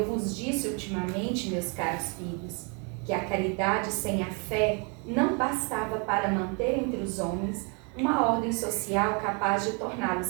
vos disse ultimamente, meus caros filhos, que a caridade sem a fé não bastava para manter entre os homens uma ordem social capaz de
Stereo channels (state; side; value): quieter; left; 35.1 dB